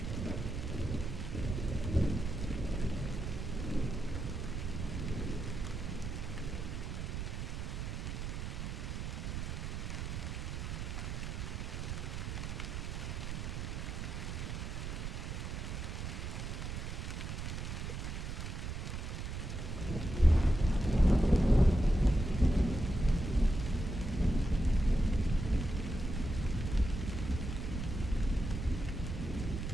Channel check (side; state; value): right; noise; rumble, 4 dB below the sound